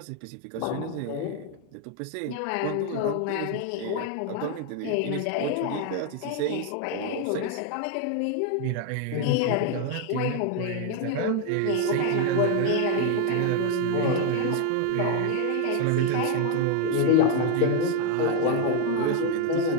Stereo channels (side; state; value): both; different; correlation 0.01